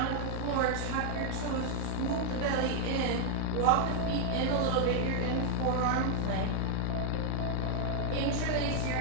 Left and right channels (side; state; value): both; different; correlation -0.01